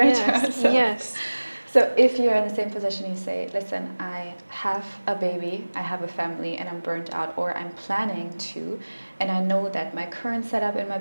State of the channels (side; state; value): both; inverted; correlation -1.00